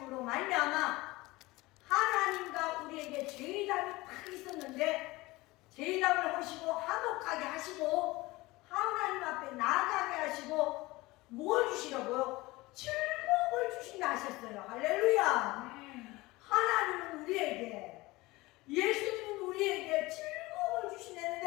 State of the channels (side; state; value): right; quieter; 20.8 dB